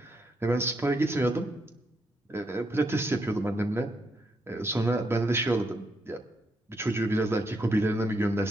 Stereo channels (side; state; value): both; normal; correlation 0.78